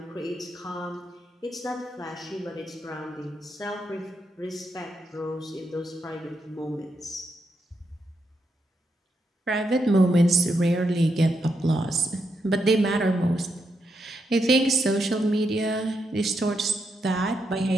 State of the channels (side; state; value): both; normal; correlation 0.82